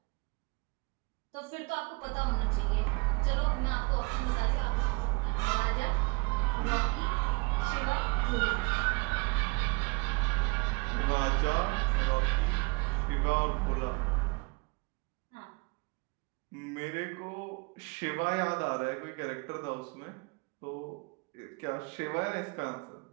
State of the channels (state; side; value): quieter; left; 29.5 dB